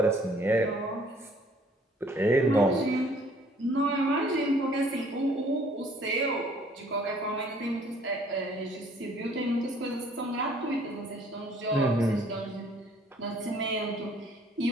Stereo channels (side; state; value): both; normal; correlation 0.58